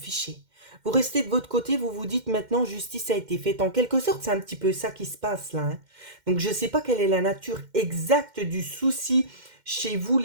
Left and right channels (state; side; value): late; left; 2.1 ms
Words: Vous restez de votre côté, vous vous dites, maintenant, justice a été faite. En quelque sorte, c'est un petit peu ça qui se passe là, hein. Donc, je ne sais pas quelle est la nature exacte du souci chez vous,